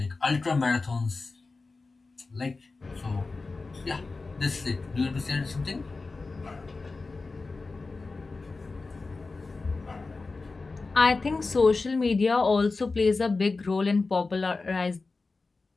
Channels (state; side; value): quieter; right; 3.8 dB